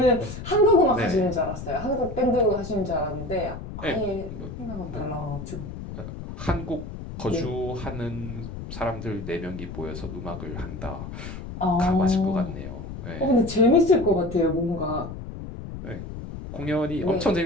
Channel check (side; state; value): left; noise; rumble, 9 dB below the sound